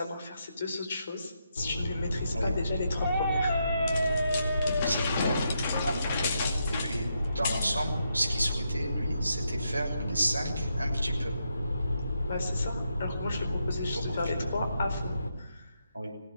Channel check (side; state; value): both; inverted; correlation -0.81